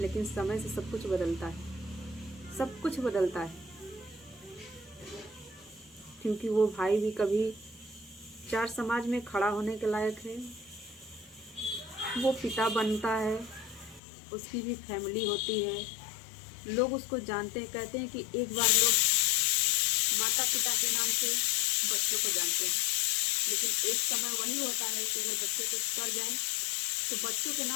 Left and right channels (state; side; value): drops out; right; at 14.0 s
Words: समय से सब कुछ बदलता है, सब कुछ बदलता है। क्योंकि वो भाई भी कभी चार समाज में खड़ा होने के लायक है, वो पिता बनता है, उसकी भी फैमिली होती है, लोग उसको जानते हैं। कहते हैं कि एक बार लोग माता पिता के नाम से बच्चों को जानते हैं, लेकिन एक समय वही होता है कि अगर बच्चे कुछ कर जाए तो बच्चों के